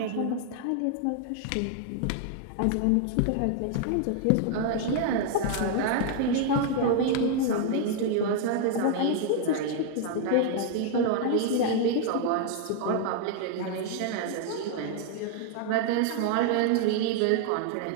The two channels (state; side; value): different; both; correlation 0.00